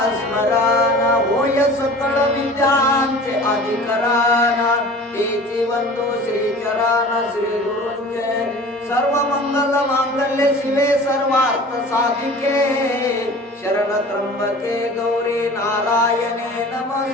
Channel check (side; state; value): both; normal; correlation 0.41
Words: स्मरण होय सकळ विद्यांचे अधिकरण तेची वंदो श्री चरण श्री गुरुंचे सर्व मंगल मांगल्य शिवे सर्वार्थ साधिके शरण त्र्यंबके गौरी नारायणे